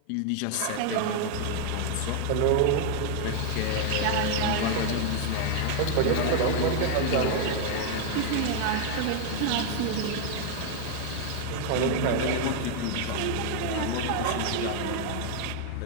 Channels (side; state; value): both; different; correlation 0.00